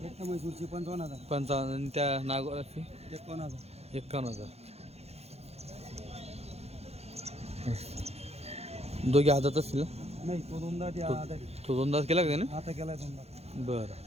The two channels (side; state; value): left; late; 0.30 ms